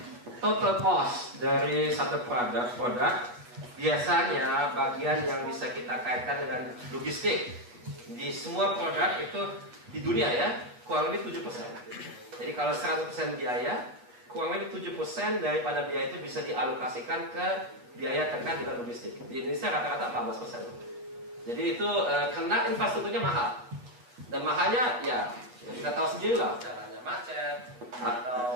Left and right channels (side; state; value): left; late; 8.2 ms